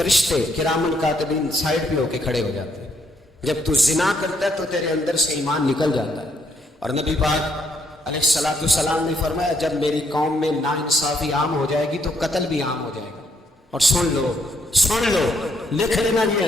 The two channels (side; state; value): both; normal; correlation 0.72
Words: کرامن کاتبین سائڈ پہ ہو کے کھڑے ہو جاتے ہیں، جب تو زنا کرتا ہے تو تیرے اندر سے ایمان نکل جاتا ہے۔ اور نبی پاک علیہ السلام نے فرمایا جب میری قوم میں ناانصافی عام ہو جائے گی تو قتل بھی عام ہو جائے گا۔ اور سن لو لکھ لینا یہ